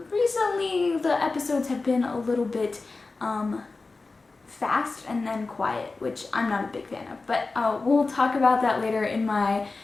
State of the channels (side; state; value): right; quieter; 3.8 dB